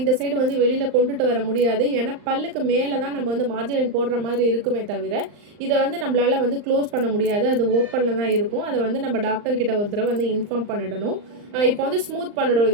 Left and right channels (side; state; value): left; late; 39 ms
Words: இந்த சைடு வந்து வெளியில் கொண்டுட்டு வர முடியாது. ஏன்னா பல்லுக்கு மேலே தான் நம்ம வந்து மார்ஜின் லைன் போடுற மாதிரி இருக்குமே தவிர இதை வந்து நம்மளால் வந்து க்ளோஸ் பண்ண முடியாது. அது ஓப்பனில் தான் இருக்கும். அதை வந்து நம்ம டாக்டர்கிட்ட ஒரு தடவை வந்து இன்ஃபார்ம் பண்ணிடணும். இப்போ வந்து ஸ்மூத் பண்ணிடும்.